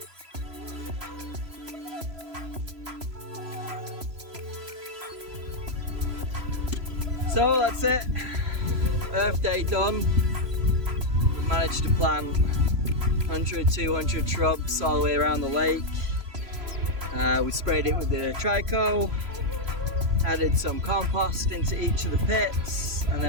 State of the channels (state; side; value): late; left; 3.0 ms